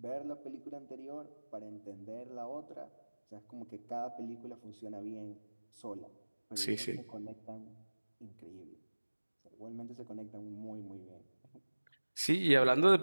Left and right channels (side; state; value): both; inverted; correlation -1.00